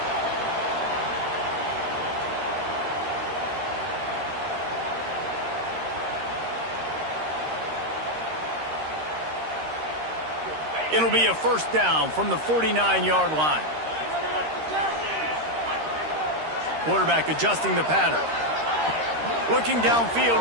It'll be a first down from the 49-yard line. Quarterback adjusting the pattern. Looking downfield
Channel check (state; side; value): late; left; 13 ms